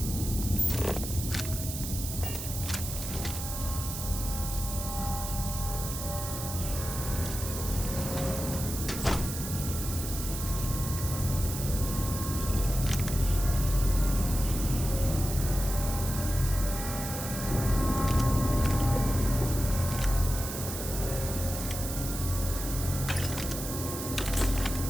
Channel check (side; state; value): right; noise; hiss, 6 dB below the sound